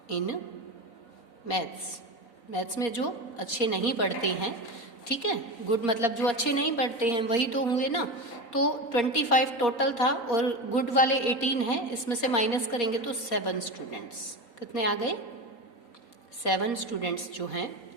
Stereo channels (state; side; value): late; right; 4.2 ms